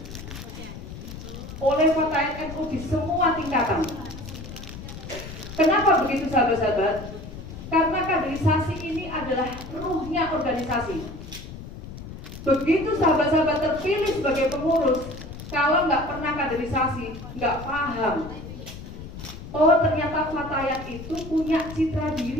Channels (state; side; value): noise; left; rumble, 12 dB below the sound